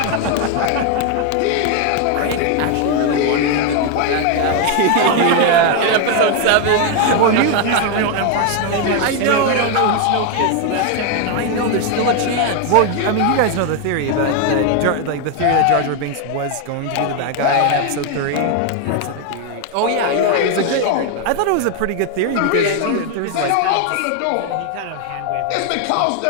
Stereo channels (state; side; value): different; both; correlation 0.01